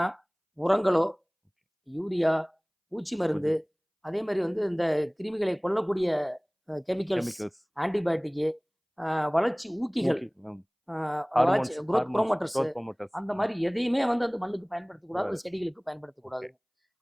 உரங்களோ, யூரியா, பூச்சி மருந்து, புரியுது. அதே மாரி வந்து இந்த கிருமிகளை கொல்லக்கூடிய கெமிக்கல்ஸ், கெமிக்கல்ஸ், ஆன்டிபயோட்டிக்கு, வளர்ச்சி ஊக்கிகள், ஊக்கி அந்த வளர்ச்சி hormones growth hormones promoters, growth promoters அந்த மாரி எதையுமே வந்து அந்த மண்ணுக்கு பயன்படுத்தக்கூடாது. கூடாது. அந்த செடிகளுக்கு ஓகே. பயன்படுத்தக்கூடாதுங்க.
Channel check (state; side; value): identical; both; correlation 1.00